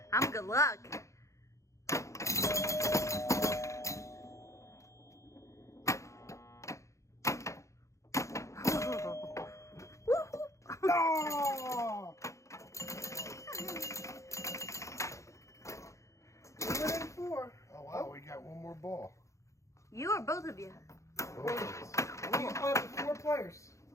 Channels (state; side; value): late; right; 0.15 ms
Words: I'm good luck. Oh! Within 4. Oh wow, we got one more ball. You or both of you? Both of us. You can play up to 4 players.